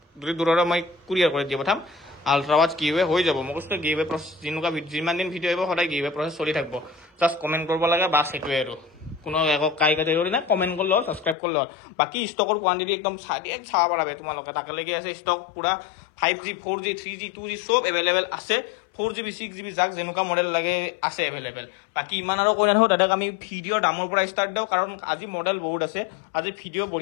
যদি দূৰৰে মই কুৰিয়াৰ কৰি দি পঠাম আল্ট্ৰাৱাচ গিভৱে হৈ যাব মই কৈছোঁ গিভৱে প্ৰচেছ যেনেকুৱা যিমান দিন ভিডিঅ' আহিব সদায় গিভৱে প্ৰচেছ চলি থাকিব জাষ্ট কমেণ্ট কৰিব লাগে বাছ সেইটোৱে আৰু কোনো একো কাটেগৰি নাই কমেণ্ট কৰিলে হ'ল ছাবস্ক্ৰাইব কৰিলে হ'ল বাকী ষ্টকৰ কোৱান্টিটি একদম চাব পাৰা তোমালোকে তাকেলৈকে আছে ষ্টক পুৰা 5G 4G 3G 2G চব এভেইলেবল আছে 4GB 6GB যাক যেনেকুৱা মডেল লাগে আছে এভেইলেবল বাকী ইমান আৰু কৈ নাথাকোঁ দাদাক আমি ভিডিঅ'ৰ দামৰ পৰা ষ্টাৰ্ট দিওঁ কাৰণ আজি মডেল বহুত আছে আজি ভিডিঅ'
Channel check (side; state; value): right; drops out; at 11.4 s